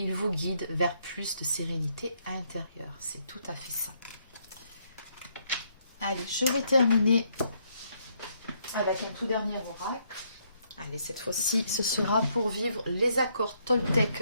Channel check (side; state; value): both; inverted; correlation -0.73